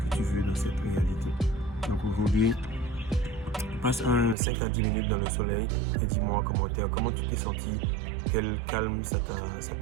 tu veux dans cette réalité. Donc aujourd'hui, passe 5 à 10 minutes dans le soleil et dis-moi en commentaire comment tu t'es senti, quel calme ça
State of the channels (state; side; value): drops out; left; at 4.4 s